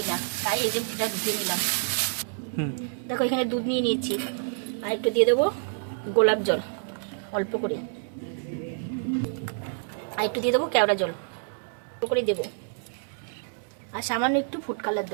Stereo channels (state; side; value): silent; left; digital silence